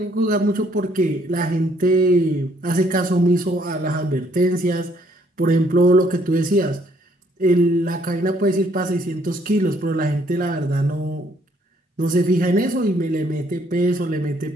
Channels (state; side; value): normal; both; correlation 0.66